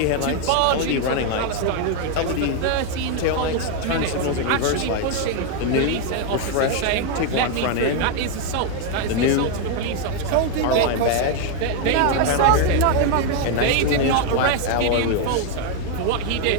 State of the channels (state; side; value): different; both; correlation 0.01